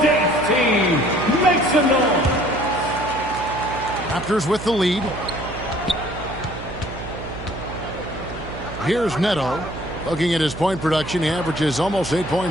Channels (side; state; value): right; noise; hum, 11 dB below the sound